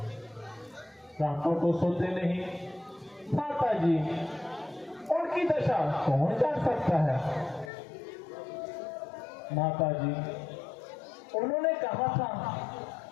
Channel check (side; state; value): right; drops out; at 7.7 s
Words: रातों को सोते नहीं। माता जी, उनकी दशा कौन जान सकता है? माता जी, उन्होंने कहा था